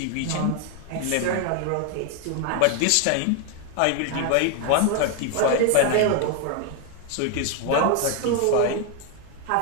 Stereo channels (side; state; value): both; different; correlation 0.01